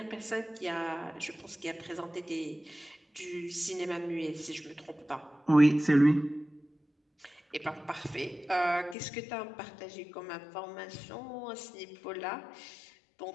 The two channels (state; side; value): drops out; right; at 9.0 s